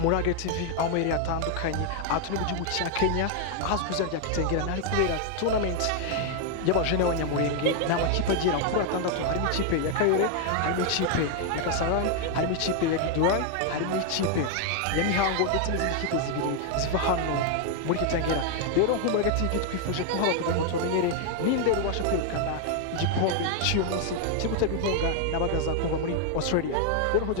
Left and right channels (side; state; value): both; different; correlation 0.00